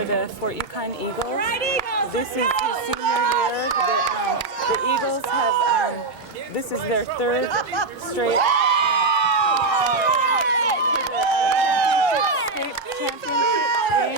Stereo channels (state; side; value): quieter; left; 3.7 dB